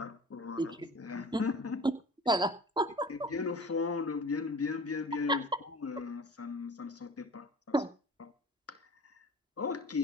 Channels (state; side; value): normal; both; correlation 0.41